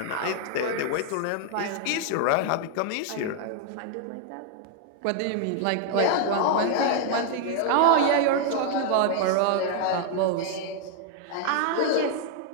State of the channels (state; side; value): different; both; correlation 0.00